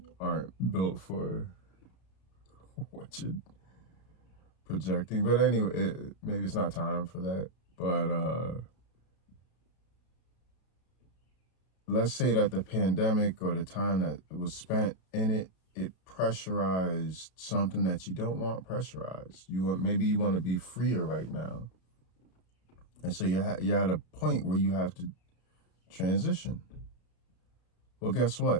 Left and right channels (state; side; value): late; right; 32 ms